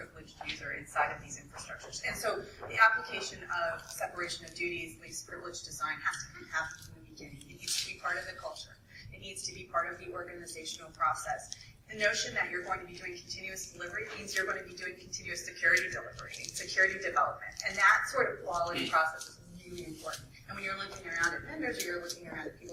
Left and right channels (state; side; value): identical; both; correlation 1.00